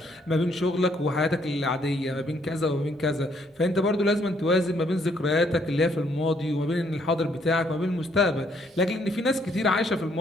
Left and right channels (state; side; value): normal; both; correlation 0.69